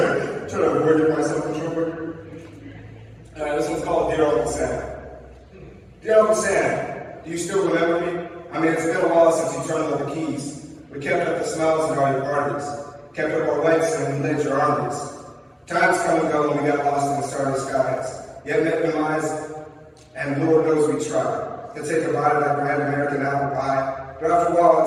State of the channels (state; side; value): identical; both; correlation 1.00